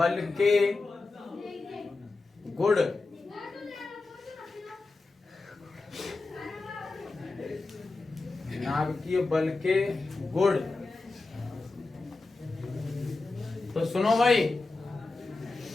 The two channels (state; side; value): quieter; right; 3.5 dB